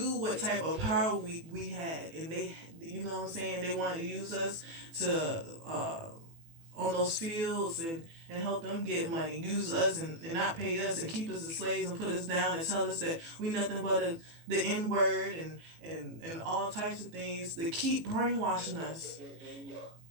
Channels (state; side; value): late; left; 18 ms